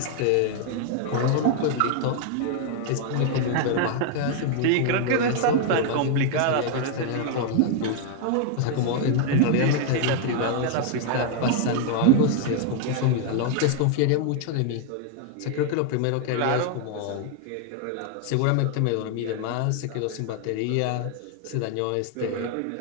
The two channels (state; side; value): different; both; correlation 0.00